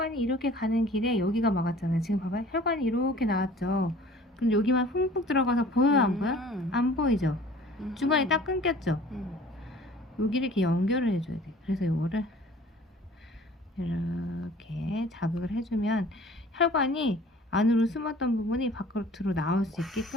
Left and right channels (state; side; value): normal; both; correlation 0.48